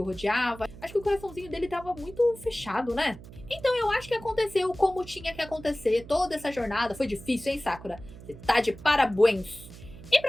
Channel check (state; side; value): noise; right; hum, 17 dB below the sound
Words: rodeava. Acho que o coraçãozinho dele tava muito fechado, né? Então eu acho que aconteceu como tinha que acontecer. Toda essa jornada foi difícil, hein, Sakura? Você tá de parabéns. E